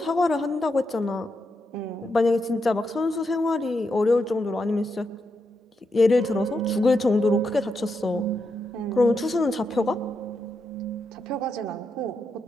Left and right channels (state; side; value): normal; both; correlation 0.83